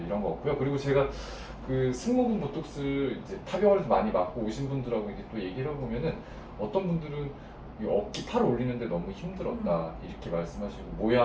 이런 거 없고요. 그리고 제가 그 승모근 보톡스 이제 타병원에서 많이 맞고 오신 분들하고 이제 또 얘기를 해보면은, 어떤 분들은 이 어깨 팔 올리는데 너무 힘들었다 이렇게 말씀하시고,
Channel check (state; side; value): identical; both; correlation 1.00